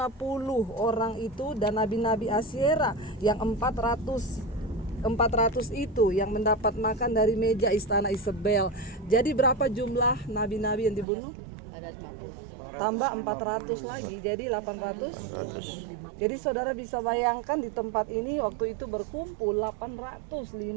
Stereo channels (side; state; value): left; drops out; at 11.1 s